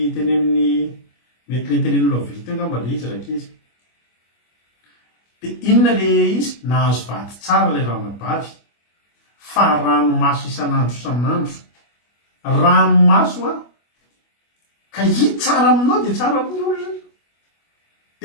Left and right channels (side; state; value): right; late; 25 ms